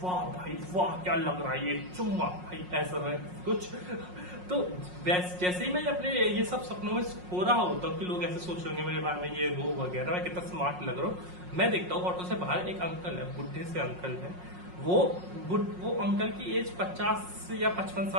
वाह भाई वाह क्या लग रहा है ये चुम्मा भाई, ऐसा है कुछ। तो जैसे ही मैं अपने ये सब सपनों में हो रहा होता हूँ कि लोग ऐसे सोचेंगे मेरे बारे में ये वो वगैरह, मैं कितना स्मार्ट लग रहा हूँ, मैं देखता हूँ ऑटो से बाहर एक अंकल है, बुढ़े से अंकल है, वो अंकल की एज 50 या 55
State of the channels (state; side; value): late; left; 5.5 ms